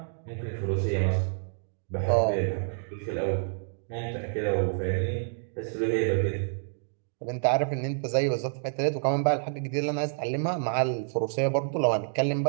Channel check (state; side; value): silent; left; digital silence